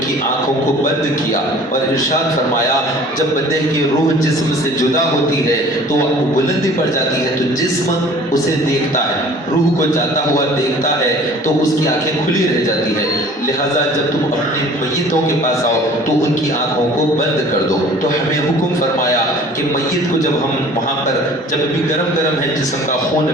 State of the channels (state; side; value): normal; both; correlation 0.48